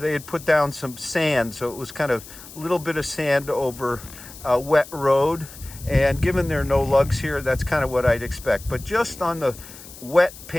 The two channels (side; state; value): left; noise; hiss, 17 dB below the sound